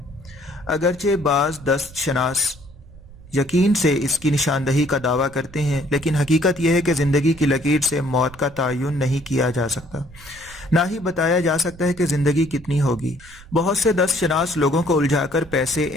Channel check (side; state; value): right; noise; rumble, 20 dB below the sound